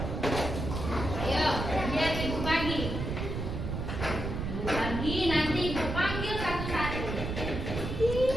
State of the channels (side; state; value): right; noise; rumble, 4 dB below the sound